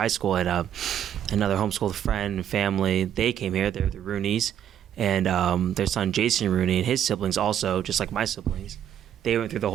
school, and another homeschooled friend and family. They came here. They're the Rooneys, and their son Jason Rooney and his siblings also, just like my siblings. They went through the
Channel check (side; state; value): left; quieter; 10.0 dB